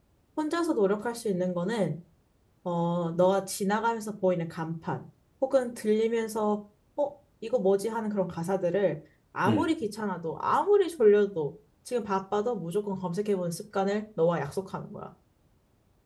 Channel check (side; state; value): both; identical; correlation 1.00